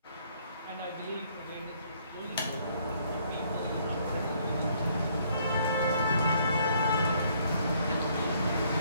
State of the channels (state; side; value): inverted; both; correlation -0.66